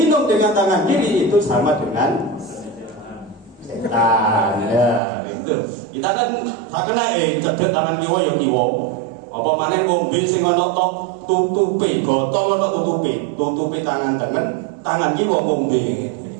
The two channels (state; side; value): drops out; left; at 5.0 s